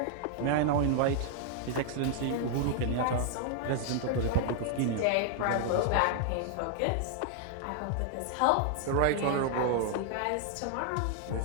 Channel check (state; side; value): different; both; correlation 0.00